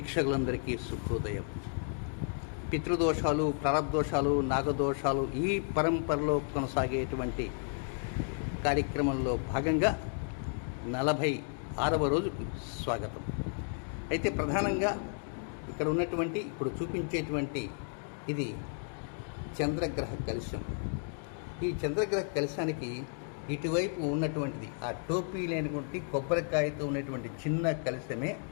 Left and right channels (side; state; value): right; silent; 56 dB below the other